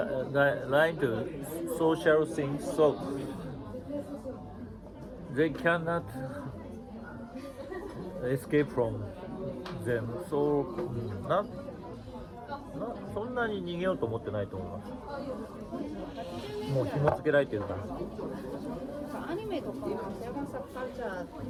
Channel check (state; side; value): identical; both; correlation 1.00